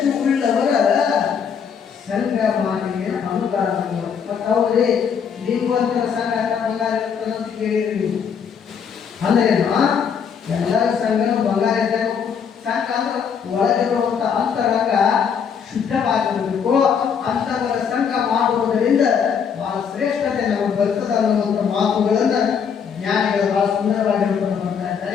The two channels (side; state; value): right; quieter; 7.0 dB